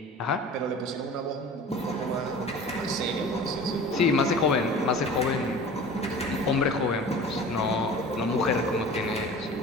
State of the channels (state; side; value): normal; both; correlation 0.40